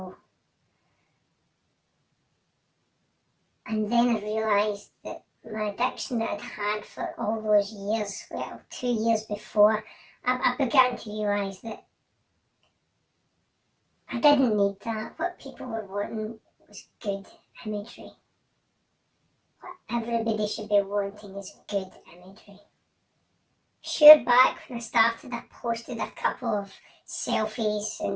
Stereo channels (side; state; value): both; identical; correlation 1.00